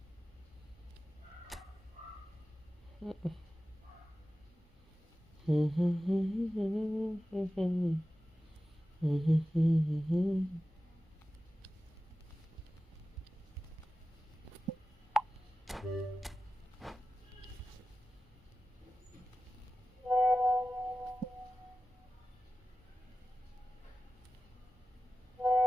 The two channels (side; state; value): both; normal; correlation 0.94